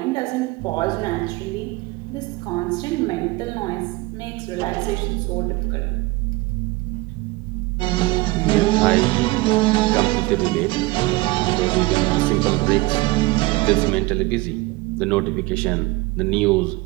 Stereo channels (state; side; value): quieter; left; 21.5 dB